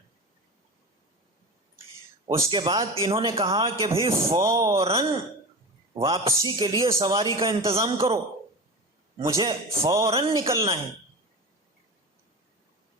اس کے بعد انہوں نے کہا کہ بھئی فوراً واپسی کے لیے سواری کا انتظام کرو، مجھے فوراً نکلنا ہے.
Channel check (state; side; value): normal; both; correlation 0.28